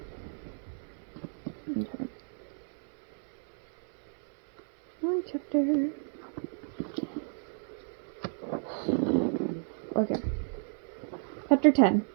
Okay. Long chapter. Okay. Chapter 10.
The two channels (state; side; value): silent; left; digital silence